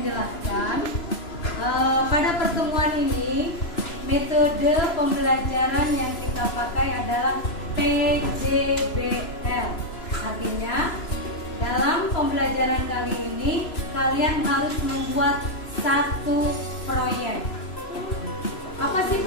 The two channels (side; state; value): right; late; 3.0 ms